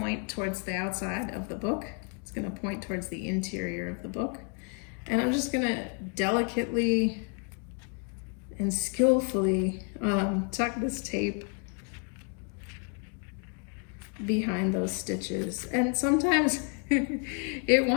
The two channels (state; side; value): quieter; right; 38.1 dB